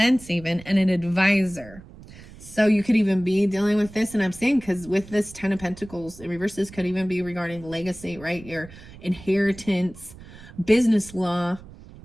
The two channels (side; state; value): right; noise; rumble, 19 dB below the sound